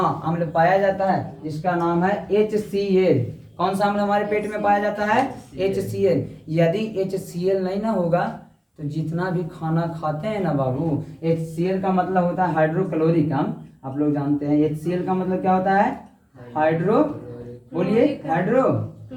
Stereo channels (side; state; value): both; identical; correlation 1.00